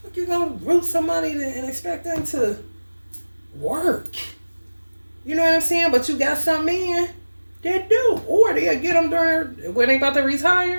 you gonna root somebody and expect them to work? You know what I'm saying? But you got some men that do. Or they'll get them during when they about to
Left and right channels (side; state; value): both; inverted; correlation -1.00